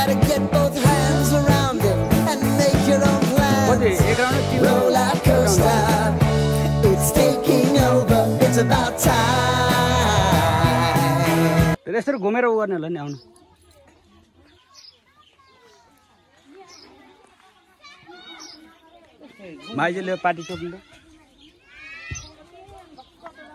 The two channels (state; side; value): identical; both; correlation 1.00